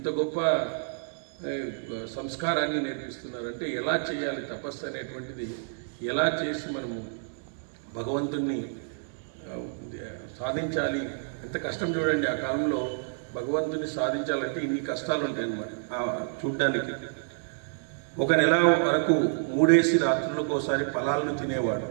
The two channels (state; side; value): silent; left; digital silence